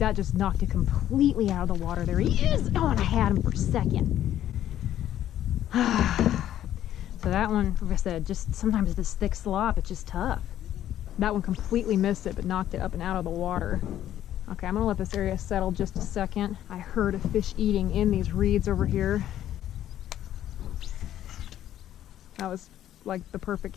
just knocked it completely out of the water. There he is. Oh, and I had him for a second. So that one, like I said, just sometimes this thick slop, it's just tough. That one completely missed it, but knocked it up and out of the water. Okay, I'm gonna let this area settle just a second. I heard a fish eating in these reeds over here. That was like the perfect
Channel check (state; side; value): quieter; right; 11.8 dB